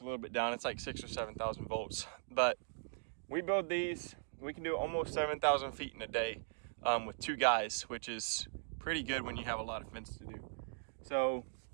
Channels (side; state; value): left; silent; digital silence